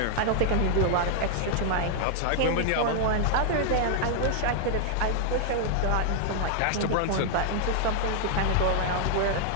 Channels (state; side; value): different; both; correlation -0.01